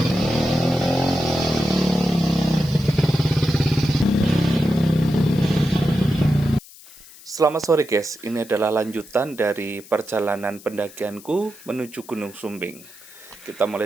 Selamat sore guys, ini adalah lanjutan dari perjalanan pendakianku menuju Gunung Sumbing. Kita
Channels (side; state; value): left; noise; hiss, 21 dB below the sound